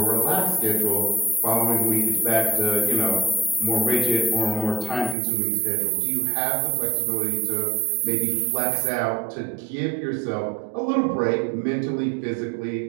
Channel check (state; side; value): drops out; left; at 5.2 s